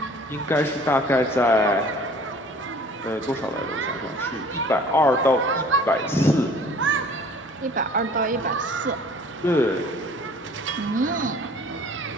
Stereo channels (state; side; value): normal; both; correlation 0.50